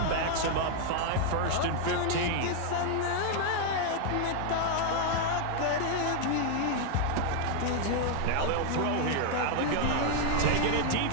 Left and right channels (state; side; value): different; both; correlation 0.00